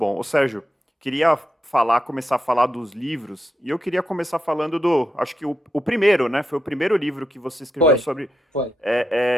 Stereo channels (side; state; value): both; normal; correlation 0.85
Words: Ô, Sérgio, queria começar a falar dos livros, e eu queria começar falando acho que o primeiro, né? Foi o primeiro livro que você escreveu sobre... Foi.